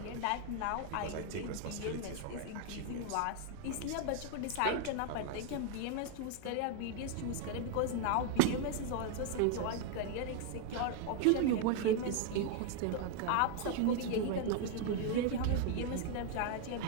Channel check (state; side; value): different; both; correlation 0.01